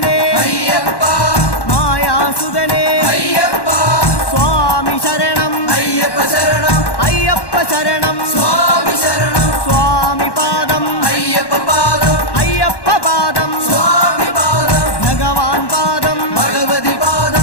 అయ్యప్ప మాయాసుదనే అయ్యప్ప స్వామి శరణం అయ్యప్ప శరణం అయ్యప్ప శరణం స్వామి శరణం స్వామి పాదం అయ్యప్ప పాదం అయ్యప్ప పాదం స్వామి పాదం భగవాన్ పాదం భగవతి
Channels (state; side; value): late; right; 1.1 ms